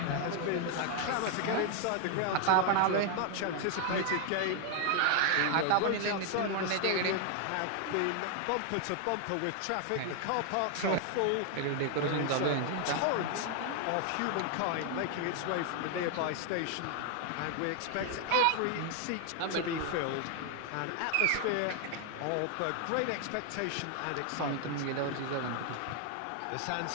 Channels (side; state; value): both; different; correlation 0.00